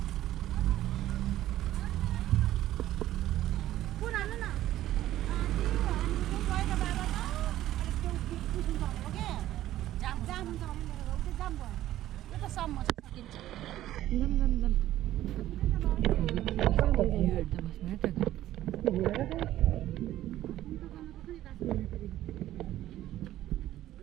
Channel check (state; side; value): quieter; left; 13.8 dB